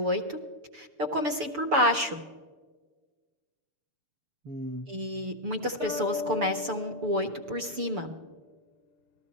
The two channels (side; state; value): left; late; 6.9 ms